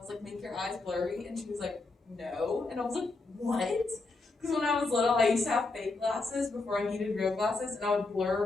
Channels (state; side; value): quieter; right; 3.5 dB